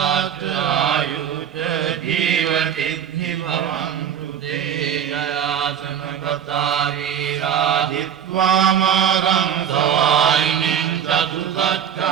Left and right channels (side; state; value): left; quieter; 8.9 dB